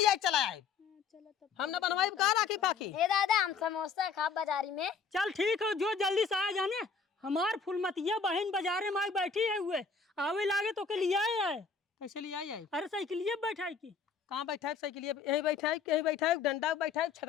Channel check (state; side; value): quieter; right; 5.5 dB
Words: चला आए। हमने बनवाई का राखी पाखी? ए दादा हम समोसा खा बाजारी में। चल ठीक है, जो जल्दी से आ जाने। हमार फुलमतिया बहन बाजारे में बैठी है हुए, आवे लागे तो के लिए आए। कैसे लिया आई? अरे साइकिलिए बैठाई की। कहाँ बैठा है साइकिल? यही बैठा है, यही बैठा है, डंडा बैठा है,